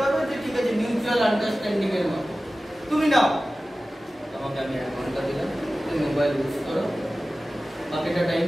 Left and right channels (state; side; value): normal; both; correlation 0.96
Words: হবে যে ঠিক আছে, মিউচুয়াল আন্ডারস্ট্যান্ডিং এর মতো। তুমি নাও, তোমাকে আমি 1 ঘন্টা দিলাম, তুমি মোবাইল ইউজ করো, বাকিটা টাইম